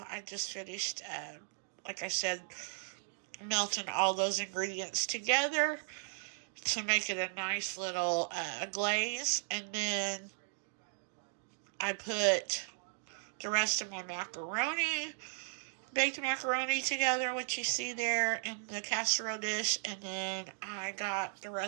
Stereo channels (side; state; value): left; silent; digital silence